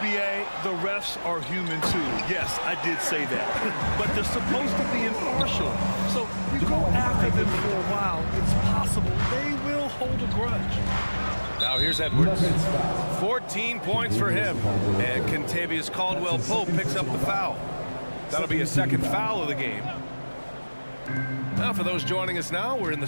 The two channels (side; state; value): both; inverted; correlation -1.00